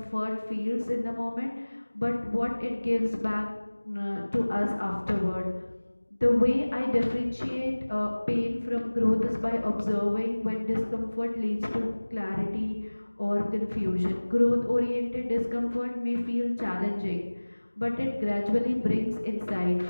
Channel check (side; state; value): both; inverted; correlation -1.00